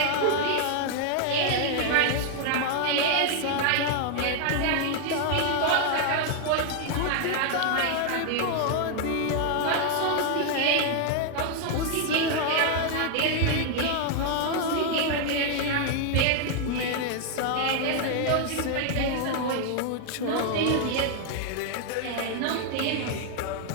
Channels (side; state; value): both; different; correlation 0.00